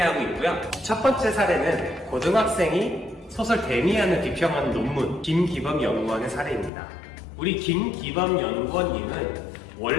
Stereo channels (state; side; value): drops out; right; at 6.7 s